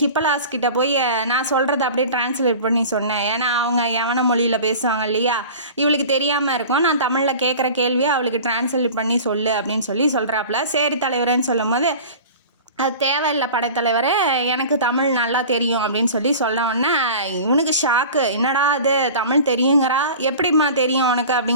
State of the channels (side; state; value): both; inverted; correlation -0.38